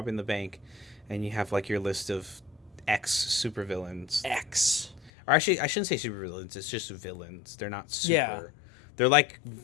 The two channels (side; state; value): right; drops out; at 5.1 s